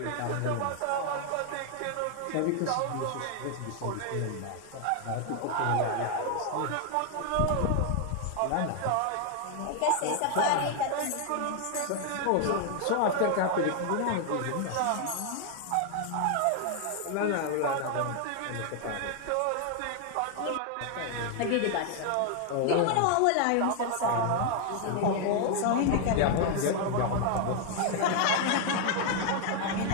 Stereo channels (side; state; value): both; different; correlation 0.00